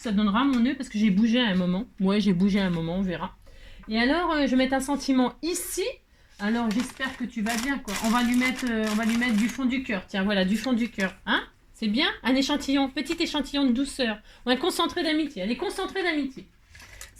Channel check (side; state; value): both; identical; correlation 1.00